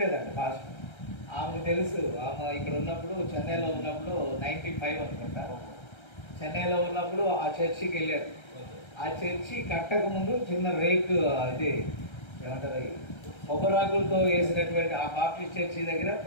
పాస్టర్. ఆమెకు తెలుసు, ఆమె ఇక్కడ ఉన్నప్పుడు చెన్నైలో ఉన్నప్పుడు 95 అనుకుంటా, చెన్నైలో ఉన్నప్పుడు ఆ చర్చికి వెళ్ళారు. ఆ చర్చి కట్టక ముందు చిన్న రేకు, ఇది ఏమంటారు, కొబ్బరాకులతో వేసినటువంటి ఆ బాప్టిస్ట్ చర్చి దగ్గర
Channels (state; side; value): late; right; 1.3 ms